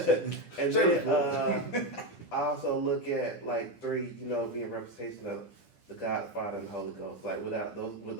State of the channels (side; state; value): right; late; 10 ms